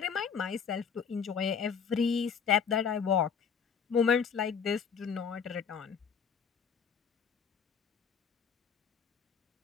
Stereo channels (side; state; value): right; quieter; 6.7 dB